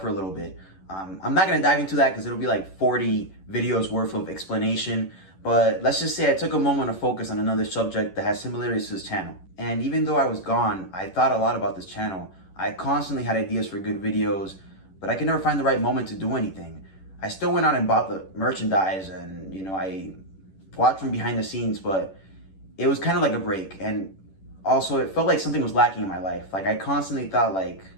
for a little bit. I'm not going to dive into that because it'll be like 40 videos worth of explanation. But let's just say I took a moment to focus on another subject that has similarities to this channel. And even though I was gone, I thought a lot about this channel. I constantly had ideas for good videos, but I could never find the right moment to do anything. I still went out and bought the merchandise and, I watched from behind the scenes, but it was kind of like a break. And also it felt like something was lacking in my life. Like I constantly thought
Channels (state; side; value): late; right; 11 ms